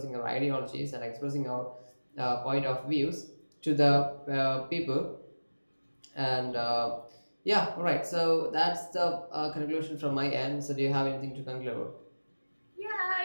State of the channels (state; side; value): inverted; both; correlation -1.00